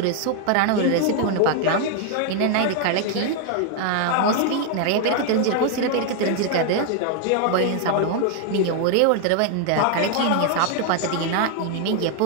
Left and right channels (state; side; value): different; both; correlation 0.00